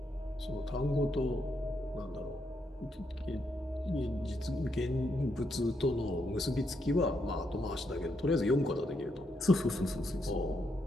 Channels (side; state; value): both; normal; correlation 0.79